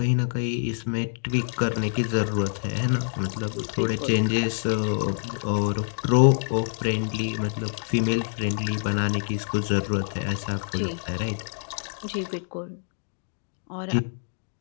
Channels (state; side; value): silent; right; digital silence